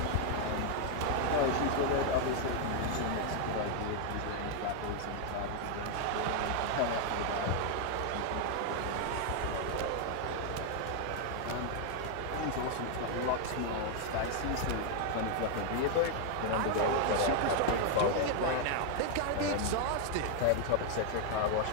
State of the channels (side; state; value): both; different; correlation 0.00